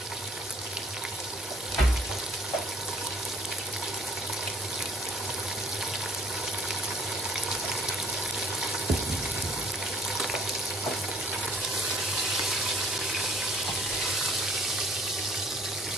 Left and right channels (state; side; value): normal; both; correlation 0.62